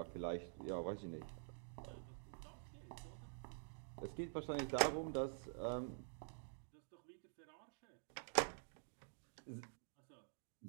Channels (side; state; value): left; silent; digital silence